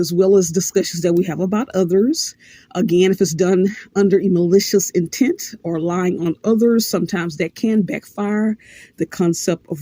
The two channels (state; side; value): identical; both; correlation 1.00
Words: well as discussions that we have about others. Again, if it's done under a malicious intent or lying on others, sometimes that can backfire. The concept of